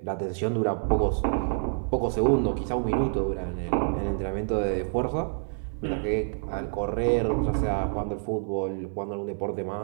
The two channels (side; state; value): left; silent; 57 dB below the other